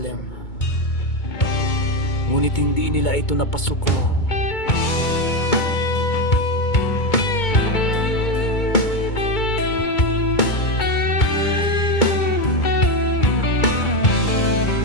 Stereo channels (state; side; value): late; right; 2.2 ms